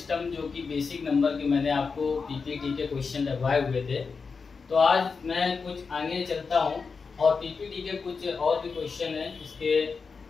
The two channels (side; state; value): right; quieter; 5.0 dB